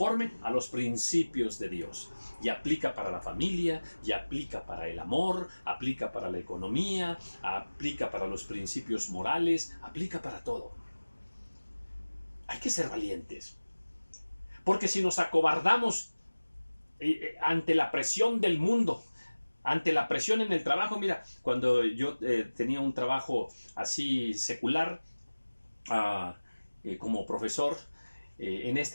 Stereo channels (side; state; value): both; inverted; correlation -1.00